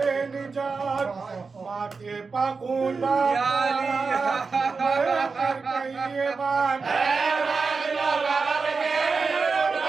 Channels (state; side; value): quieter; left; 4.6 dB